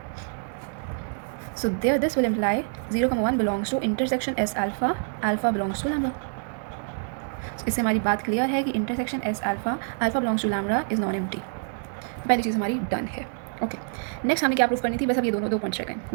So there this will imply 0,1 belongs to intersection S alpha, alpha belongs to lambda। So इससे हमारी बात क्लियर है कि intersection S alpha, alpha belongs to lambda is non empty। पहली चीज़ हमारी डन है। ओके, नेक्स्ट हमें क्या प्रूफ करनी थी, बस अब ये दो पॉइंट्स रह गए।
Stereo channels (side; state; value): left; silent; 59 dB below the other